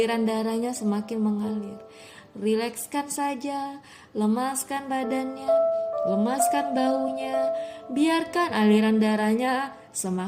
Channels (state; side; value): identical; both; correlation 1.00